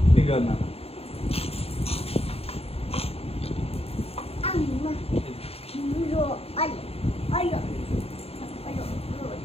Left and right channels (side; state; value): right; late; 0.29 ms